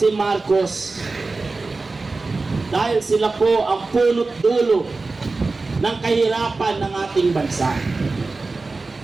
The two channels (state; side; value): quieter; left; 3.7 dB